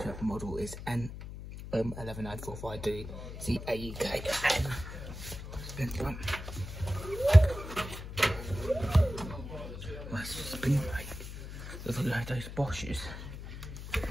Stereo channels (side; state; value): left; noise; hum, 10 dB below the sound